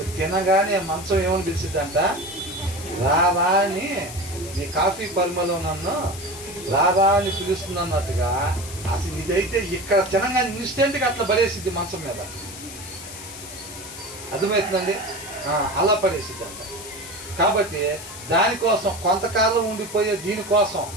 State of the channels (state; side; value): noise; left; hiss, 13 dB below the sound